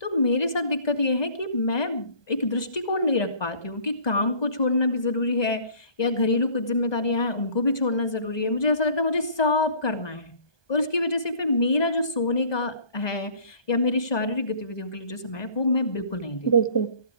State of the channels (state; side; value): late; right; 1.2 ms